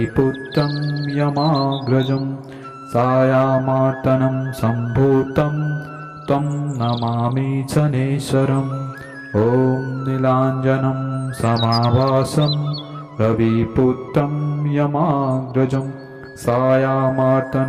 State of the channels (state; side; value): identical; both; correlation 1.00